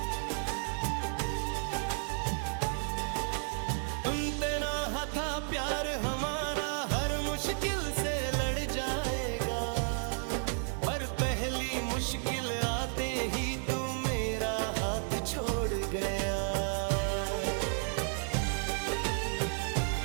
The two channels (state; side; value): silent; left; 56 dB below the other